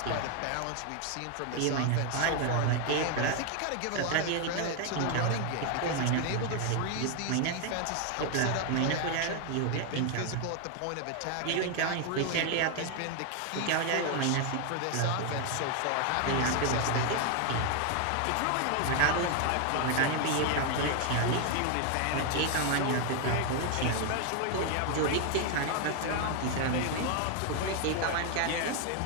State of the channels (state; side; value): different; both; correlation 0.01